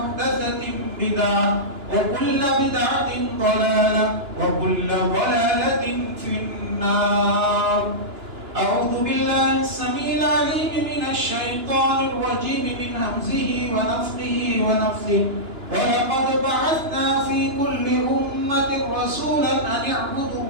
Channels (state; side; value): late; left; 2.9 ms